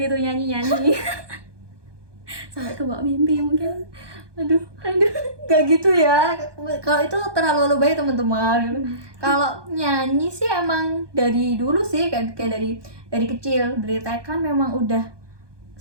nyanyi-nyanyi. Sampai kebawa mimpi mungkin. Aduh, nggak gitu ya. Kalau itu terlalu lebay teman-teman. Kalau nyanyi sih emang dari dulu sih, kayak dari kecil, dari TK memang udah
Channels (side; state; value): left; late; 1.2 ms